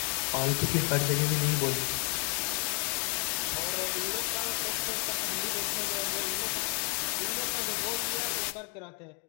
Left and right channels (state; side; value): quieter; right; 37.0 dB